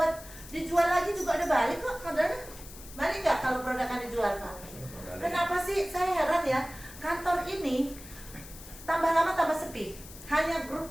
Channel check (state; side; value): noise; left; hiss, 16 dB below the sound